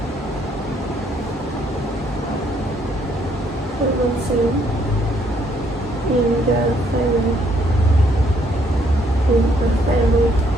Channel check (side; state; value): both; normal; correlation 0.69